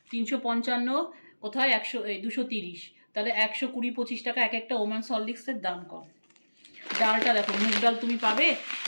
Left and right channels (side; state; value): both; inverted; correlation -1.00